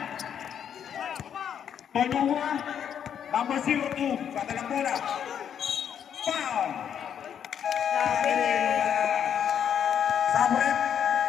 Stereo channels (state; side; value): quieter; right; 8.6 dB